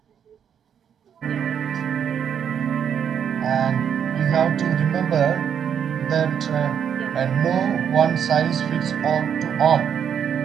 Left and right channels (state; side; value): quieter; left; 8.2 dB